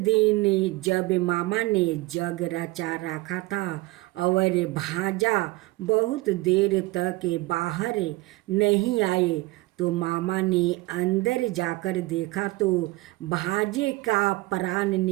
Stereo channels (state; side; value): quieter; left; 21.1 dB